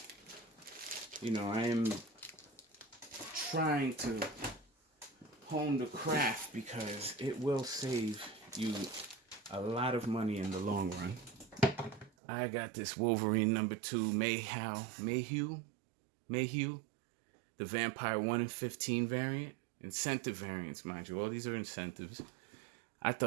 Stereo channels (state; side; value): drops out; left; at 12.1 s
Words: you know, I am trying to hone the craft because it will save you a lot of money in the long run. I got this Wolverine #2 Mayhew, the Vampire 1 in 15 variant, incentive variants, mind you. All these are incentives. I